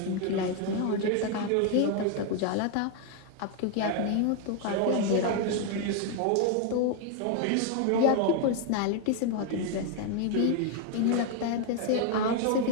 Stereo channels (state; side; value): different; both; correlation 0.01